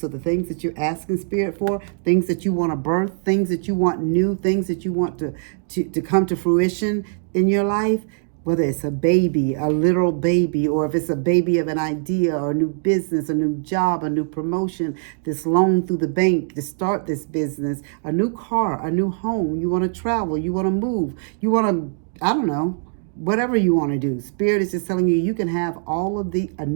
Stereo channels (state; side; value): silent; left; digital silence